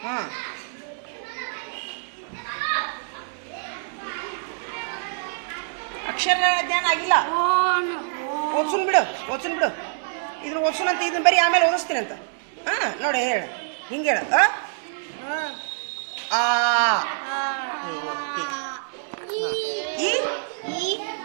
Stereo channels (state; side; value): silent; left; digital silence